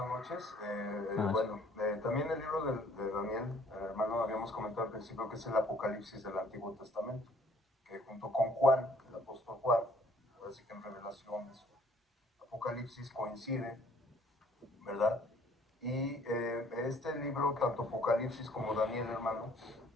noches. Buenas noches. Bueno, también el libro de Daniel, hermano, habíamos comentado al principio que es el Apocalipsis del Antiguo Testamento, que junto con Juan, el apóstol Juan, así que en revelaciones, Apocalipsis coincide, ¿verdad? Y este libro, tanto Apocalipsis como Daniel, hermano,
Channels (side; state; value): both; normal; correlation 0.59